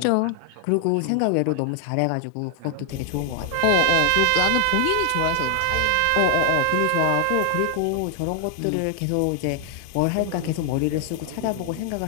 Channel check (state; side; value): different; both; correlation 0.00